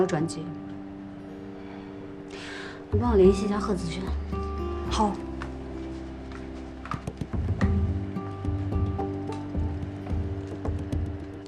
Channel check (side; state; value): both; identical; correlation 1.00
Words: 转机。你帮我联系一下贺子轩。好。